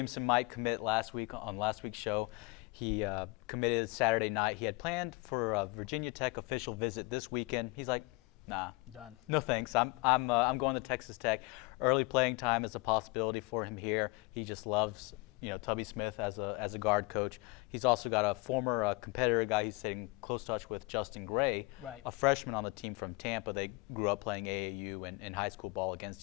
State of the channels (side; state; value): right; quieter; 26.4 dB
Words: might commit last week on last week's show. He committed Saturday night. He had planned for a Virginia Tech official visit this weekend. He's like, nah, done. No thanks. I'm going to Texas Tech. Early playing time is a possibility for him here. He just loves, Tubby Smith as a guard coach. He's also got a former competitor guy he's staying in close touch with, Justin Gray, right, a freshman on the team from Tampa. They grew up playing AAU and high school ball